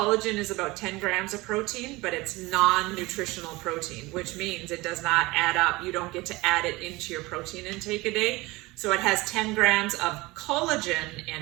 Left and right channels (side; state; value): left; quieter; 21.8 dB